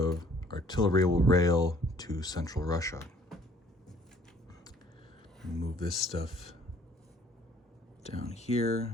artillery will rail to Central Russia. Move this stuff down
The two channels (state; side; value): normal; both; correlation 0.59